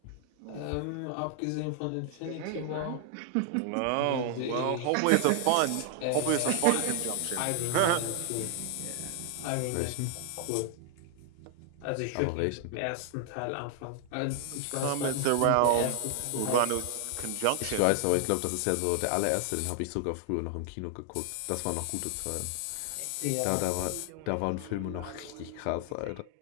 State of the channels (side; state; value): both; different; correlation 0.00